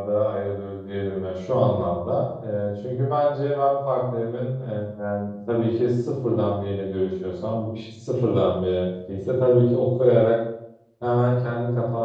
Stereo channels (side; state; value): both; identical; correlation 1.00